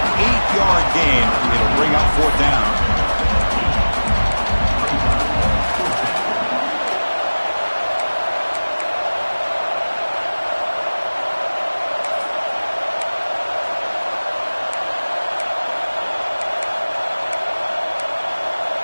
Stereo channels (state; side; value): inverted; both; correlation -1.00